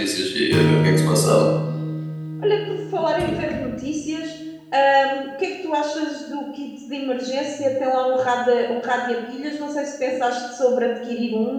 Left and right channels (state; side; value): identical; both; correlation 1.00